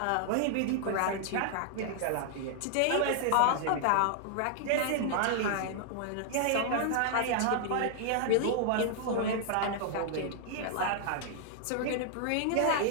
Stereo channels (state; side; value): different; both; correlation -0.01